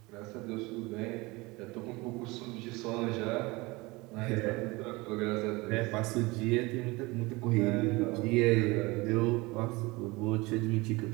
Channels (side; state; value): left; quieter; 23.3 dB